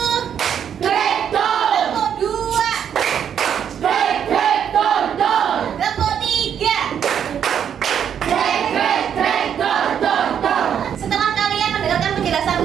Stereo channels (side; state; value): left; quieter; 8.6 dB